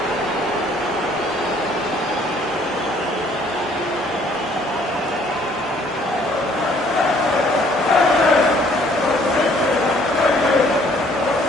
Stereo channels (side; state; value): both; normal; correlation 0.60